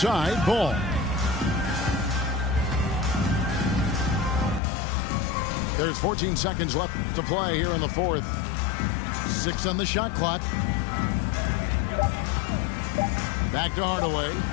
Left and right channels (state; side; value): drops out; right; at 4.6 s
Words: Ball. There's 14 seconds left to play here in the 4th. 6 on the shot clock. Back to Hardaway.